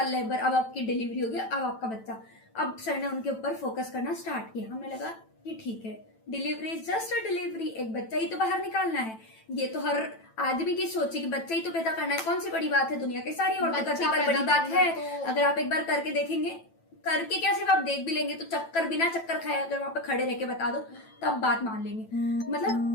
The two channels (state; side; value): late; right; 9.0 ms